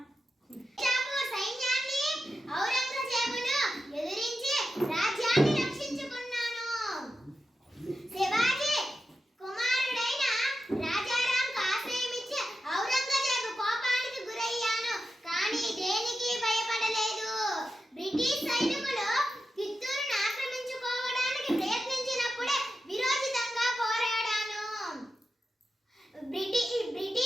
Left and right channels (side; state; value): both; normal; correlation 0.90